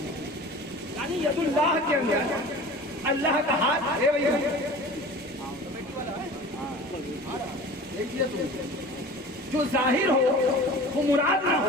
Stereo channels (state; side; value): normal; both; correlation 0.39